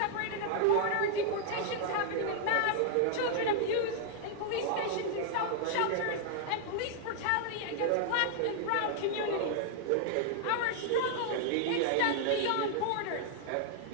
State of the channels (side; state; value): both; different; correlation -0.01